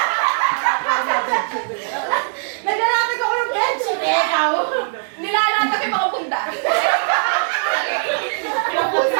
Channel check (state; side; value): silent; left; digital silence